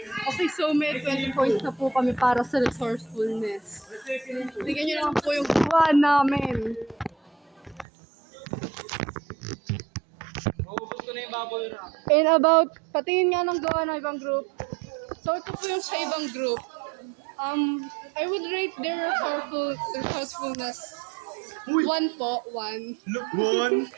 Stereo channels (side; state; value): left; drops out; at 7.9 s